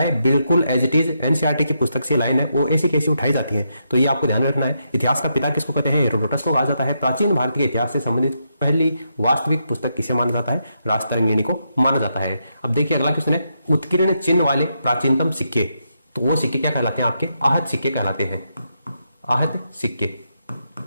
बिल्कुल एज इट इज एनसीईआरटी की पुस्तक से लाइन है वो ऐसी कैसी उठाई जाती है, तो ये आपको ध्यान में रखना है। इतिहास का पिता किसको कहते हैं, हेरोडोटस को कहा जाता है। प्राचीन भारत के इतिहास से संबंधित पहली वास्तविक पुस्तक किसे माना जाता है, राजतरंगिणी को माना जाता है। अब देखिए अगला क्वेश्चन है उत्कीर्ण चिन्ह वाले प्राचीनतम सिक्के। तो वो सिक्के क्या कहलाते हैं, आपके आहत सिक्के कहलाते हैं। आहत सिक्के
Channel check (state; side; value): inverted; both; correlation -0.81